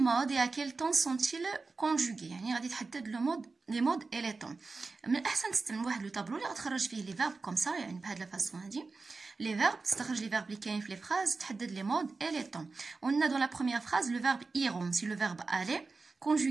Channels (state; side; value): quieter; left; 4.0 dB